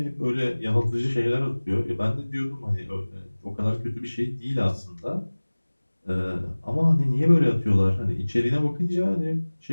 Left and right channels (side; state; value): both; inverted; correlation -1.00